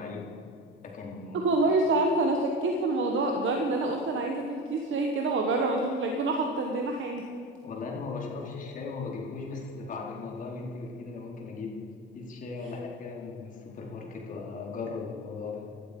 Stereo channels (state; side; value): normal; both; correlation 0.26